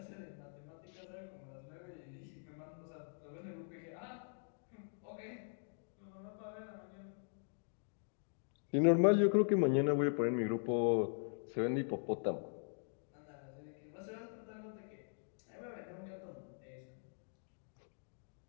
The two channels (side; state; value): right; silent; digital silence